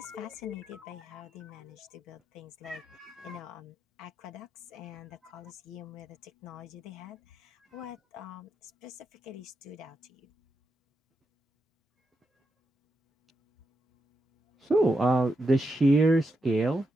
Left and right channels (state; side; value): normal; both; correlation 0.85